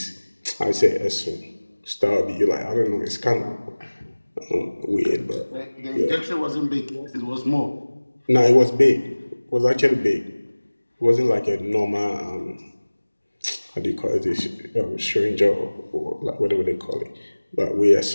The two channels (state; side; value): inverted; both; correlation -1.00